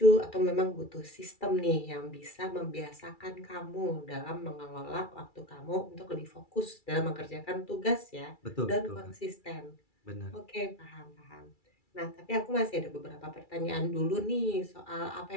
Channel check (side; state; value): right; late; 2.3 ms